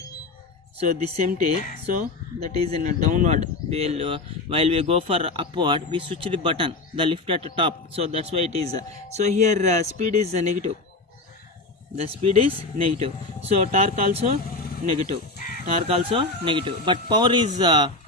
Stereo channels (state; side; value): quieter; right; 3.2 dB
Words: So this empty. So that is in a downward. While we go for upward, we switch the button, the lift at the top. So that's why it is. So here speed is negative. The speed is negative. So torque also negative. Torque also negative. But power is